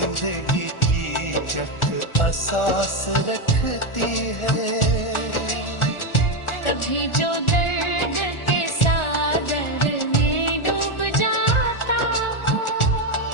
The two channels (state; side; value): late; right; 1.4 ms